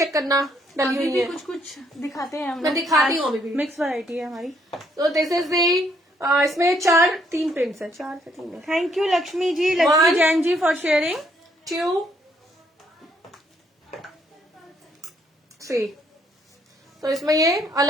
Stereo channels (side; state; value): both; normal; correlation 0.69